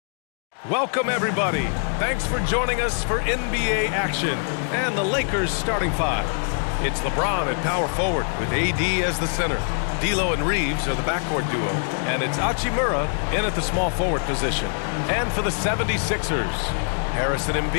Welcome, everybody. Thanks for joining us for NBA action and the Lakers starting five. It's LeBron at power forward with AD as the center. D'Lo and Reeves are the backcourt duo, and it's Hachimura in at the small forward position. And for the 76ers, Harris and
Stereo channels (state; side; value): silent; right; 58 dB below the other